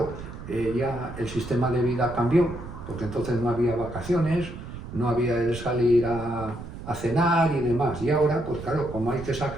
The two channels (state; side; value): noise; right; rumble, 11 dB below the sound